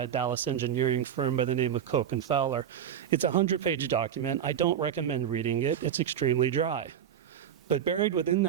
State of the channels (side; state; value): left; quieter; 9.3 dB